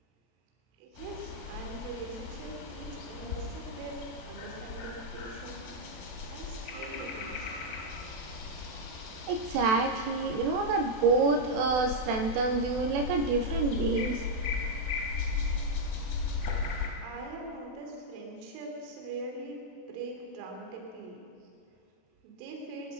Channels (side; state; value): left; late; 32 ms